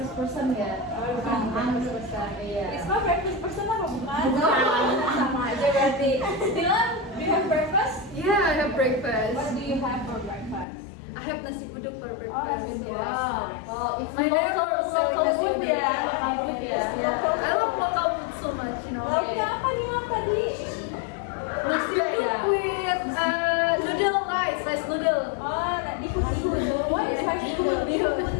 person ya. Oh, bukan breakfast person. Iya. Risma breakfast person apa bukan? Bukan. Sama aja berarti. Dylan, do you have breakfast? Yeah, I have breakfast. What do you have for breakfast? I have nasi uduk for Oh, breakfast. nasi uduk. Yes. Oh, it's My local neighbor sells food nasi uduk. ya. Local food ya. Yeah, I love local food so much, you know. Lauknya apa nih Mam tadi? Nasi uduk with noodle rice noodle. Oh, tadi bihun. What is bihun? Bihun.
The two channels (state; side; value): drops out; right; at 10.7 s